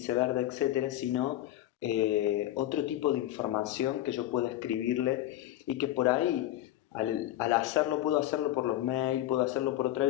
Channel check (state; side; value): quieter; right; 13.9 dB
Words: verde, etcétera, sino otro tipo de información que yo pueda escribirle y que por ahí, al hacerlo, puedo hacerlo por los mails, puedo hacerlo por otra